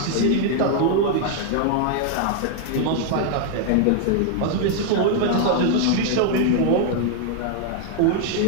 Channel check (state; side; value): different; both; correlation 0.00